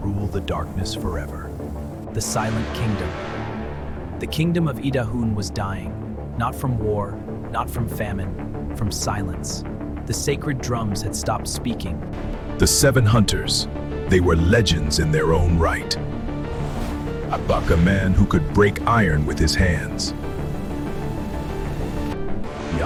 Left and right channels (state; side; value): identical; both; correlation 1.00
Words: the darkness forever. The Silent Kingdom. The kingdom of Idahun was dying, not from war, not from famine, from silence. The sacred drums had stopped speaking. The 7 hunters, they were legends in their own right. Abak, a man who could break iron with his hands.